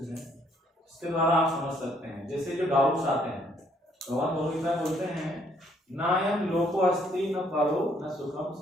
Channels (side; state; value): both; normal; correlation 0.67